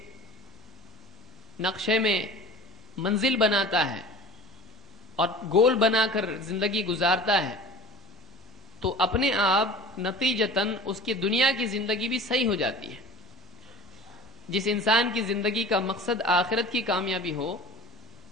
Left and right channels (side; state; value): both; normal; correlation 0.40